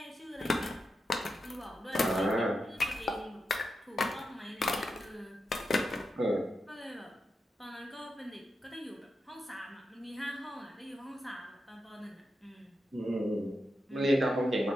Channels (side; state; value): both; normal; correlation 0.87